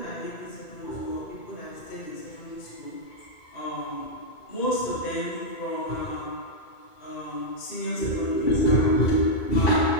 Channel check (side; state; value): right; late; 2.2 ms